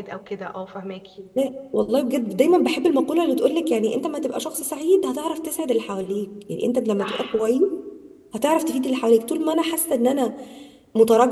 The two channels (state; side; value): identical; both; correlation 1.00